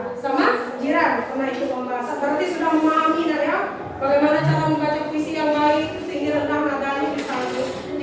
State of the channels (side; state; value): both; identical; correlation 1.00